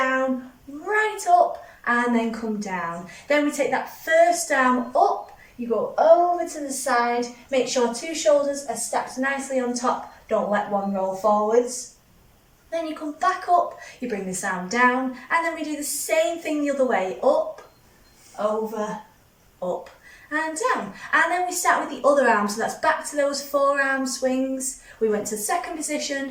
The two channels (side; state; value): both; identical; correlation 1.00